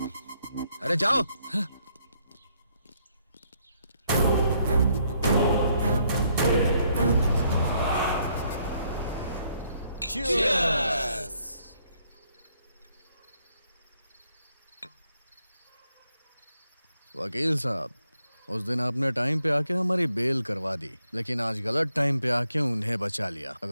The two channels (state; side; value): inverted; both; correlation -0.72